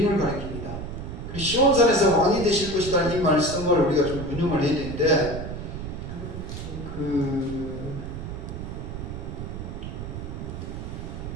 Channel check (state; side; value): noise; right; rumble, 7 dB below the sound